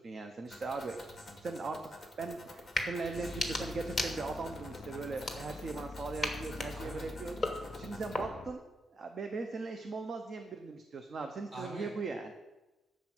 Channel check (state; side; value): normal; both; correlation 0.81